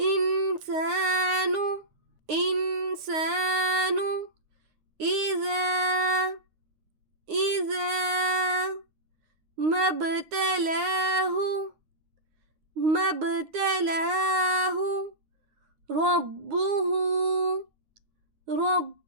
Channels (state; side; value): late; left; 9.6 ms